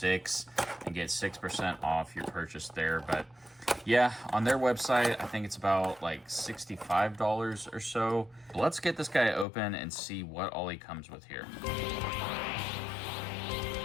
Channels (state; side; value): drops out; right; at 9.5 s